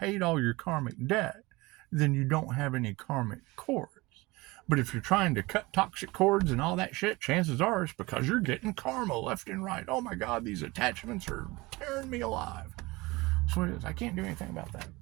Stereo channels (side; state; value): left; quieter; 22.4 dB